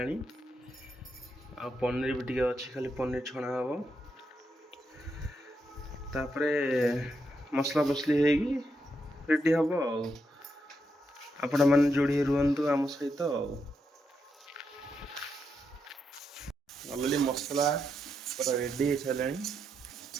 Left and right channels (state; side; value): normal; both; correlation 0.82